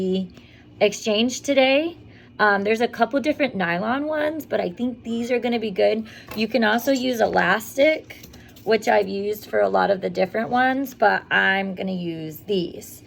exchange today. There's a couple different nylon ones, but I think these are going to be good. You can also use elastic, which I've used for a lot of the different ones, but I'm going to use these.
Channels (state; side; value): identical; both; correlation 1.00